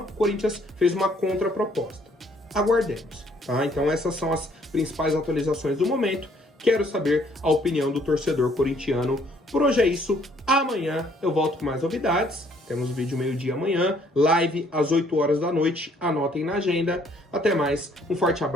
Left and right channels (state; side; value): normal; both; correlation 0.64